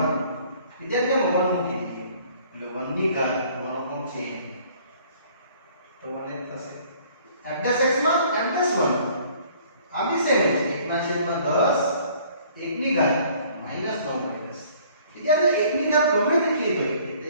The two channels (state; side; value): inverted; both; correlation -0.56